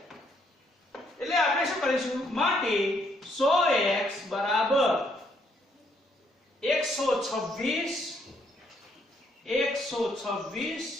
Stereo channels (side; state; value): both; normal; correlation 0.70